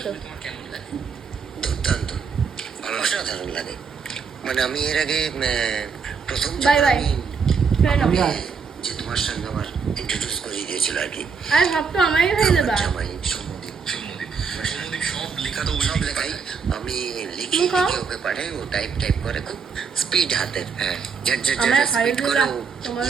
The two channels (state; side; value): quieter; left; 5.7 dB